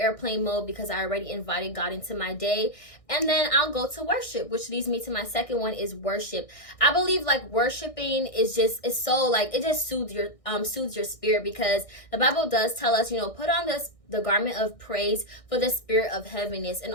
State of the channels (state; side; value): late; right; 1.6 ms